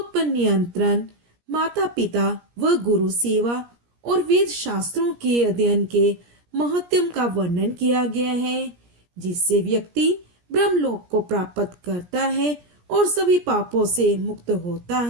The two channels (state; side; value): late; left; 17 ms